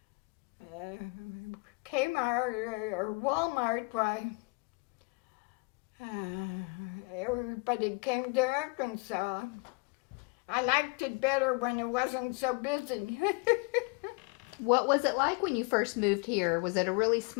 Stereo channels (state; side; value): quieter; right; 29.8 dB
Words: Kmart or Walmart, why, everybody came to Arkansas. I liked it better when it wasn't so busy. what was it like when you first moved here? Was it a really